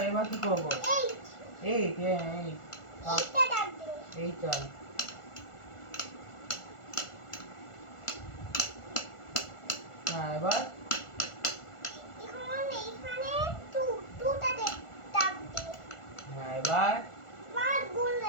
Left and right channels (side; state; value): right; late; 1.4 ms